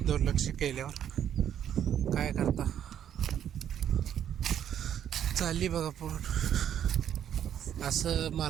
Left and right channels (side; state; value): left; quieter; 9.8 dB